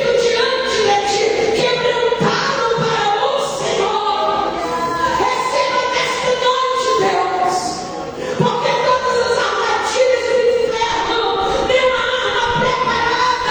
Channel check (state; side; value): identical; both; correlation 1.00